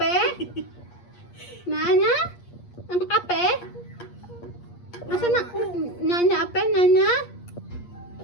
Nanya? Ang ape? Nasaan na? Nanya ape? Nanya?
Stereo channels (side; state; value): right; late; 8.5 ms